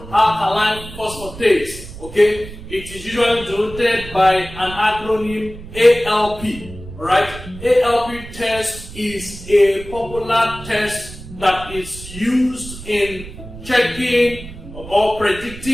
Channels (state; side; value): noise; right; rumble, 14 dB below the sound